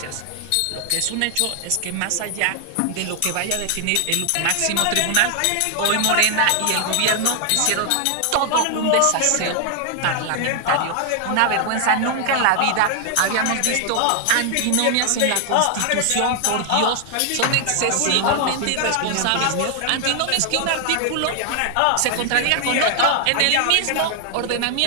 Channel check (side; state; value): both; different; correlation 0.00